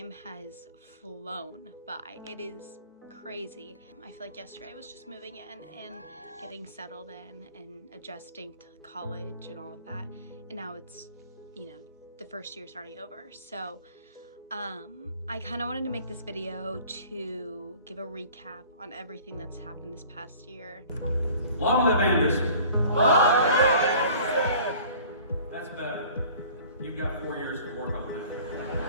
has flown by. It is crazy. I feel like yesterday I was just moving in and getting settled in and adjusting to college and all of that. And now it's, the first year's already over. So I kind of wanted to make this video to give a recap on everything that's happened this past year. Long live Anderson! Long live Anderson! That's better. You've got 4 years to work on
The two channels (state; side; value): inverted; both; correlation -0.48